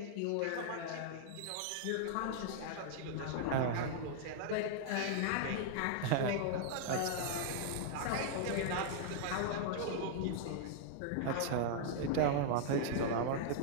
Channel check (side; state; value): both; different; correlation -0.01